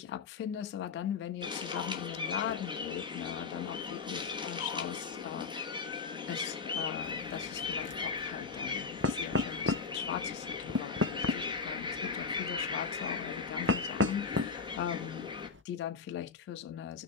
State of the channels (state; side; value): quieter; right; 4.9 dB